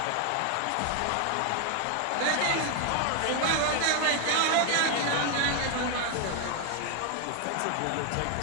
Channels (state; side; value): different; both; correlation 0.00